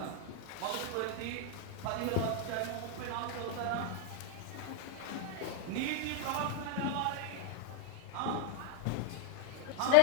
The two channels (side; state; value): both; different; correlation 0.00